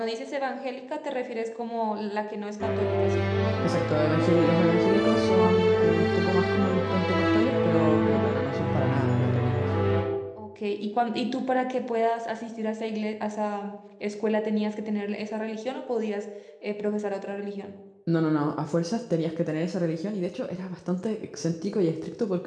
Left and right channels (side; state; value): both; identical; correlation 1.00